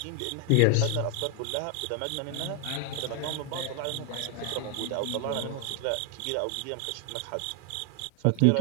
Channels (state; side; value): different; both; correlation 0.00